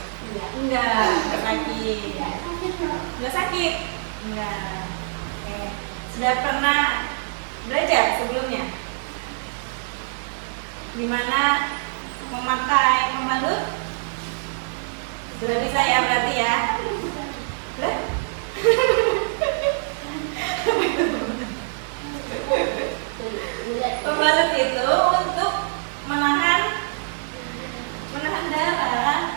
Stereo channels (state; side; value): silent; left; digital silence